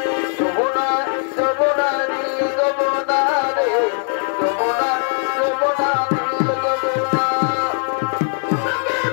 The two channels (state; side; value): silent; right; 56 dB below the other